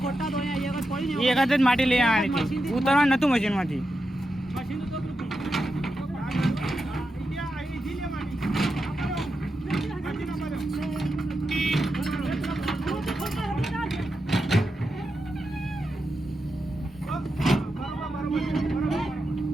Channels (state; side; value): normal; both; correlation 0.88